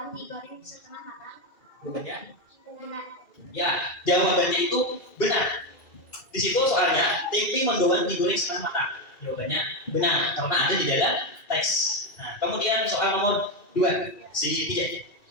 digoreng setengah matang. Jawabannya? Benar. Ya, jawabannya itu benar. Di situ soalnya tempe mendoan digoreng setengah matang. Jawabannya benar karena ada di dalam teks. Nah, kemudian soal nomor 2, si Tijak.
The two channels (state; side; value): late; right; 2.4 ms